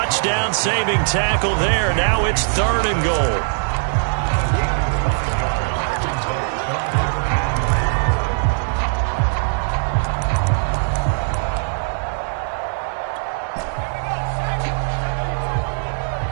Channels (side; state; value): left; silent; digital silence